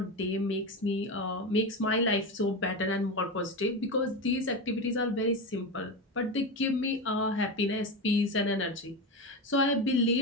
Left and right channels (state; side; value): normal; both; correlation 0.19